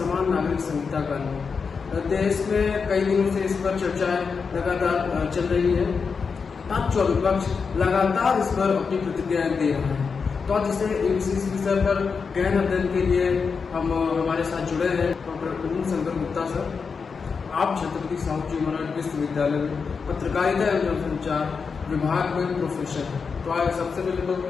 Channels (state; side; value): quieter; right; 5.4 dB